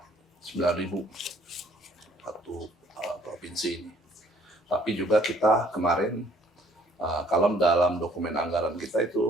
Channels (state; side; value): normal; both; correlation 0.60